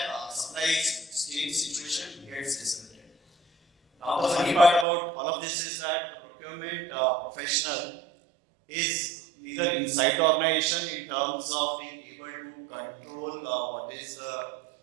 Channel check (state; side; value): drops out; left; at 4.9 s